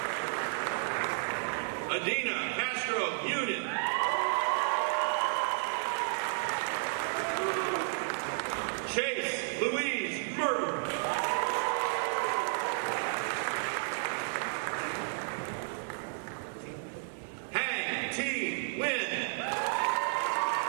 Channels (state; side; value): silent; left; 56 dB below the other